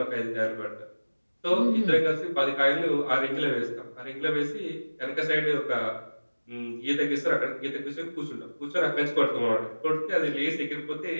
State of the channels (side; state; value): both; inverted; correlation -1.00